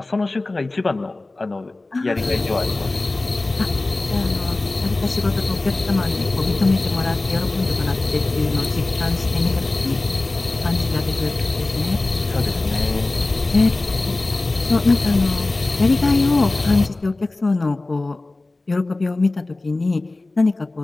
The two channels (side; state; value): right; quieter; 3.0 dB